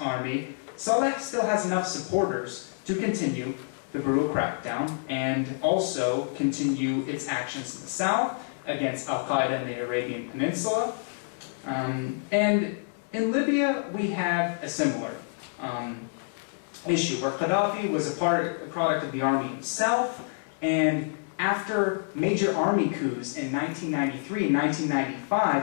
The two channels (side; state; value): right; silent; 60 dB below the other